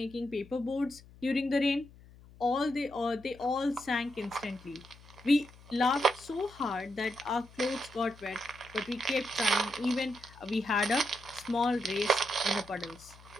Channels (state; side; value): noise; left; hum, 22 dB below the sound